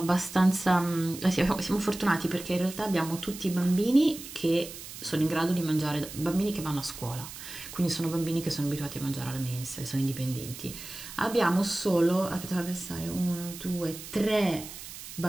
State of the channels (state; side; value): noise; right; hiss, 12 dB below the sound